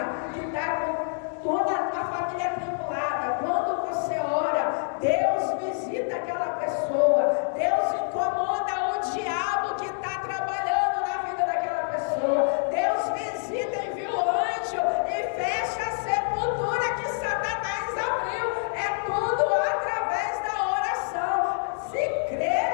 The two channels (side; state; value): right; silent; digital silence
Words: que está com toda a família atribulada, quando você ora, Deus visita aquela pessoa. Deus incomoda o diabo que está trabalhando na vida daquela pessoa. Deus visita, envia o anjo e fecha a sepultura que Satanás abriu. É tudo através da oração. Se